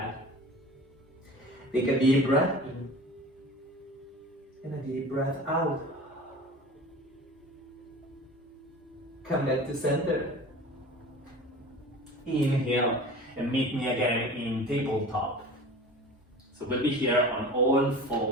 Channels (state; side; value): normal; both; correlation 0.38